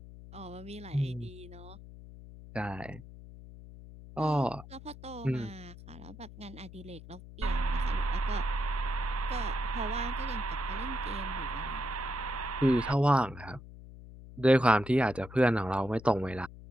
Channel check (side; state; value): left; noise; hum, 16 dB below the sound